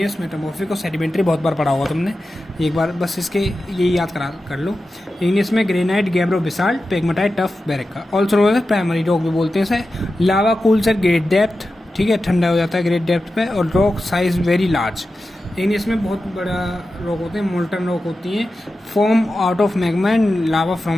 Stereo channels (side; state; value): both; normal; correlation 0.92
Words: मेटामॉर्फिक और सेडिमेंट्री बहुत बार पढ़ा होगा तुमने, एक बार बस इसके ये याद कर लो। इग्नियस में granite, gabbro, basalt, pegmatite, tuff, breccia. Also known as primary rock भी बोलते हैं इसे। Lava cools at great depth, ठीक है, ठंडा हो जाता है ग्रेट डेप्थ पे। और rock size very large. Igneous में बहुत बड़ा रॉक होते हैं, मोल्टन रॉक होती हैं, form out of magma and lava